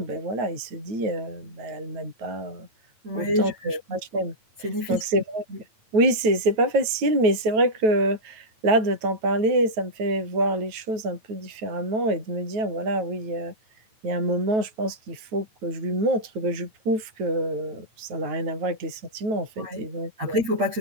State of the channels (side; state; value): left; late; 9.2 ms